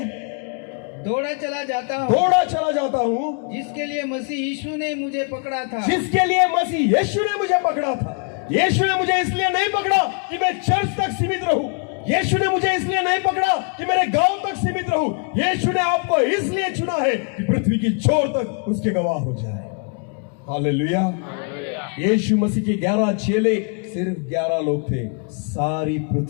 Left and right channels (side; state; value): right; quieter; 39.7 dB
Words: दौड़ा चला जाता हूँ जिसके लिए मसीह यीशु ने मुझे पकड़ा था। यीशु ने मुझे इसलिए नहीं पकड़ा कि मैं चर्च तक सीमित रहूं। यीशु ने मुझे इसलिए नहीं पकड़ा कि मेरे गांव तक सीमित रहूं। यीशु ने आपको इसलिए चुना है कि पृथ्वी की छोर तक उसके गवाह हो जाए। हालेलुया। यीशु मसीह के 11 चेले सिर्फ 11 लोग थे, सारी